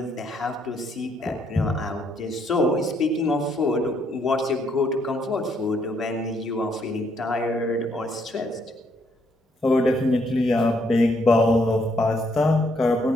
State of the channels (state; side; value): normal; both; correlation 0.72